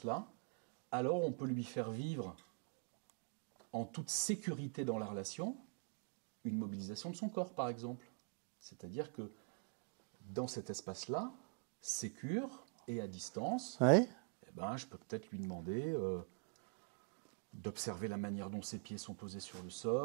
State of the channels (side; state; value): left; quieter; 39.9 dB